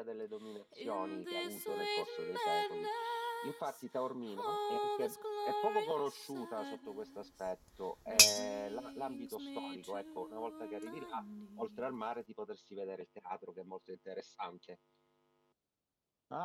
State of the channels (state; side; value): identical; both; correlation 1.00